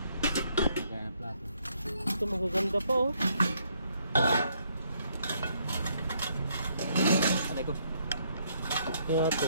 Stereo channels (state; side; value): inverted; both; correlation -0.71